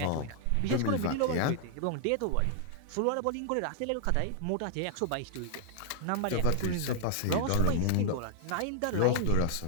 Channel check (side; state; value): both; different; correlation -0.01